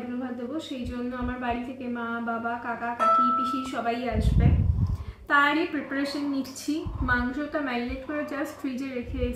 ভাত দেবো। সেই জন্য আমার বাড়ি থেকে মা, বাবা, কাকা, কাকি, পিসি সবাই আসবে, তারই প্রিপারেশন নিচ্ছি। মাংসটা ম্যারিনেট করে জাস্ট ফ্রিজে রেখে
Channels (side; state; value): both; identical; correlation 1.00